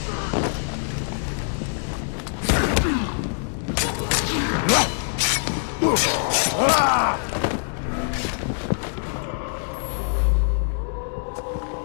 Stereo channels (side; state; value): right; silent; digital silence